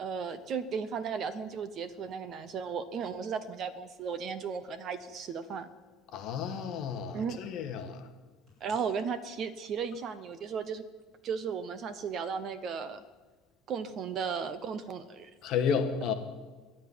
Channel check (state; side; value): normal; both; correlation 0.49